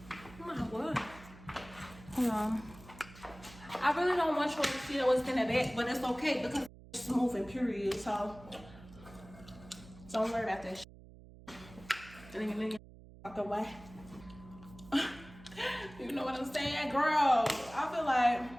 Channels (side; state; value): right; noise; hum, 19 dB below the sound